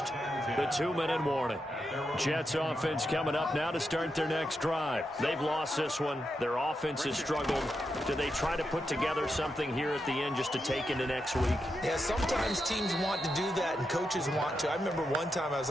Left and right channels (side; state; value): both; normal; correlation 0.85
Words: the 2-minute warning. Jets offense coming up now to start their next drive. They've lost this one. Their offense has struggled. Do they try to put together something here at the end just to take into next week? Yeah, sometimes teams want to do that and coaches want to. I remember one time I was